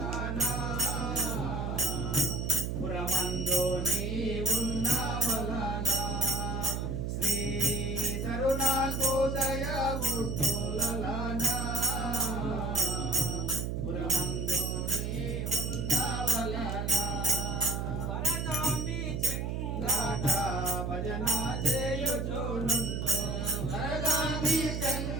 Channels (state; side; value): noise; right; hum, 2 dB below the sound